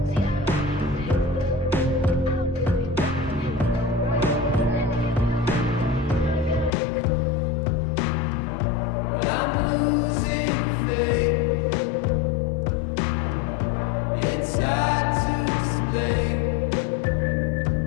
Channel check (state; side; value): drops out; right; at 6.7 s